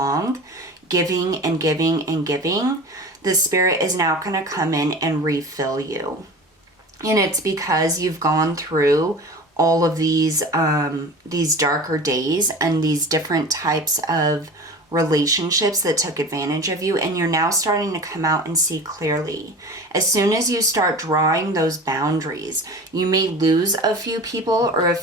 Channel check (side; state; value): both; normal; correlation 0.36